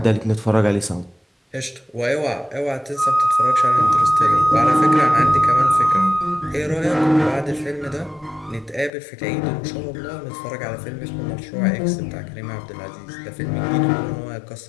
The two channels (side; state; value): right; drops out; at 8.9 s